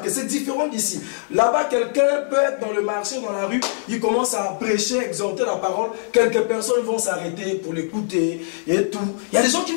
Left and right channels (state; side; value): silent; right; digital silence